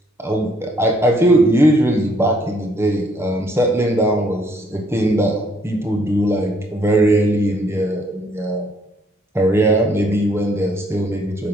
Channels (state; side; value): normal; both; correlation 0.66